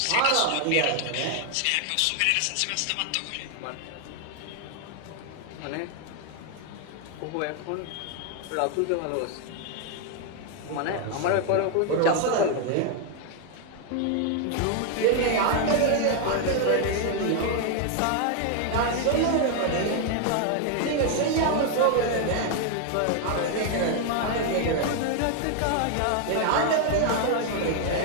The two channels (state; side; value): different; both; correlation 0.00